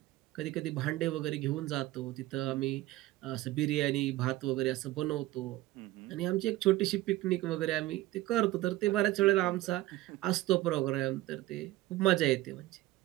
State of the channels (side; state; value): left; quieter; 17.0 dB